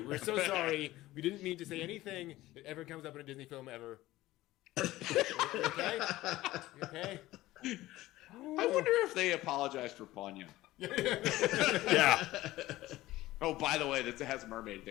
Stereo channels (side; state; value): right; quieter; 16.9 dB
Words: We're so sorry. We didn't mean to say anything that ever comes up in a Disney film ever. Okay? I wonder if they apologized for Ponyo. Yeah. Oh, by the way, that has a mermaid